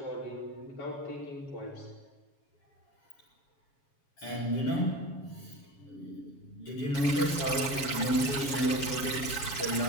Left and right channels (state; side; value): late; right; 7.2 ms